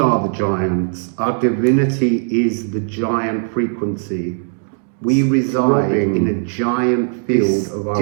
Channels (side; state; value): left; silent; digital silence